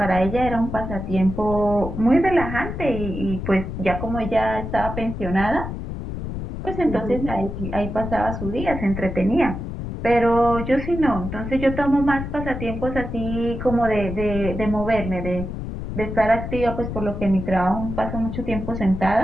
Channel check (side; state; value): left; noise; rumble, 6 dB below the sound